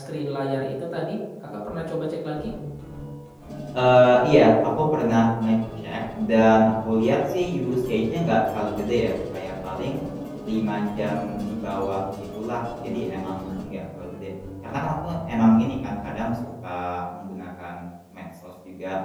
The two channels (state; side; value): identical; both; correlation 1.00